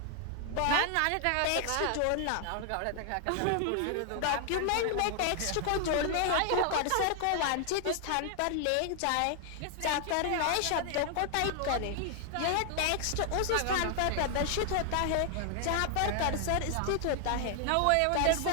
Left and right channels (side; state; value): both; different; correlation 0.00